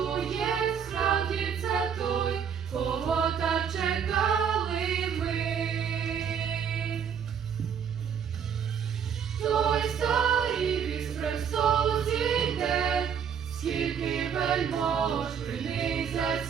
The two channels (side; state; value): left; quieter; 7.6 dB